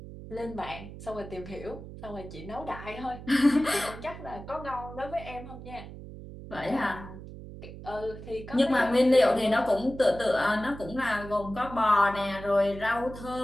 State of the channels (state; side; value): noise; right; hum, 13 dB below the sound